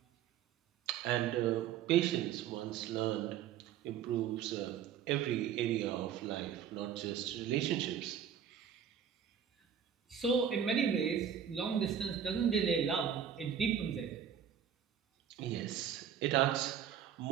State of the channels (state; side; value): quieter; left; 8.7 dB